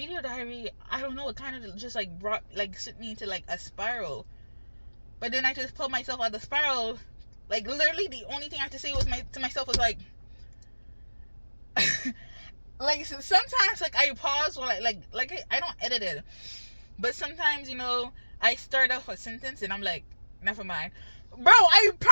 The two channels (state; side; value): inverted; both; correlation -1.00